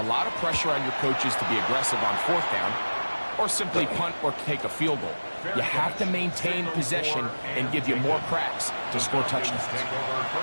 lot of pressure on your coaches to be aggressive on fourth down or simply punt or take a field goal. You have to maintain possession and give you more cracks to score touchdowns. Take over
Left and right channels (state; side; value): inverted; both; correlation -1.00